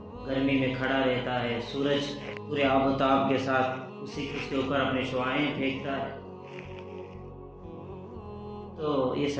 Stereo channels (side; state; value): both; identical; correlation 1.00